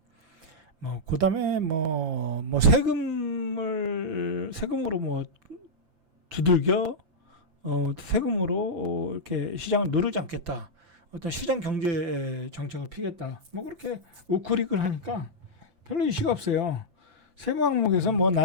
그 다음에 세금으로 두들겨, 세금으로 이렇게 시장을 누르지 않겠다. 어떤 시장 경제 정책을 피겠다. 그렇게 우크릭을 하니까 별로 이슈가 없어요. 세무 항목에서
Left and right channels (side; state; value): left; late; 5.9 ms